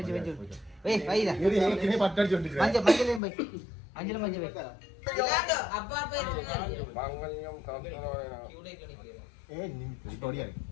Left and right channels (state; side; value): drops out; right; at 3.2 s